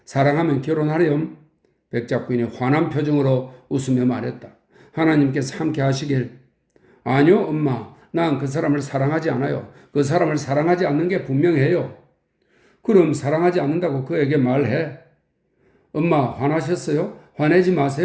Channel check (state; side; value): identical; both; correlation 1.00